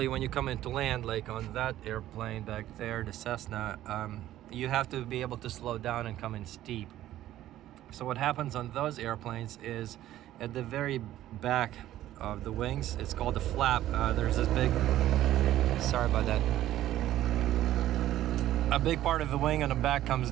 when you come into land, like on that airplane back there, the Cessna, you have to be able to slow down and come in steep. So what happens on those airplanes is at the very back of the wings, it's called the flap, there's this big, sorry about that, a big part of the wing on the back comes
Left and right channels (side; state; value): left; quieter; 13.5 dB